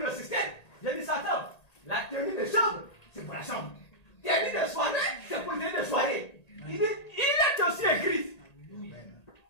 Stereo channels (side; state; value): right; late; 1.8 ms